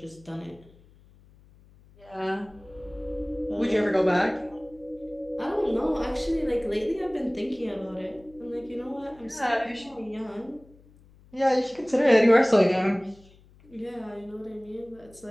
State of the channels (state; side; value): noise; left; hum, 26 dB below the sound